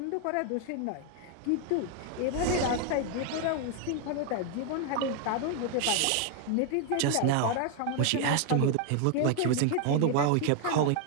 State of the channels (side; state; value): both; different; correlation 0.00